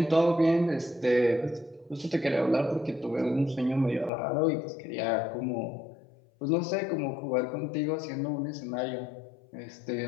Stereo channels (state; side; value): drops out; right; at 4.1 s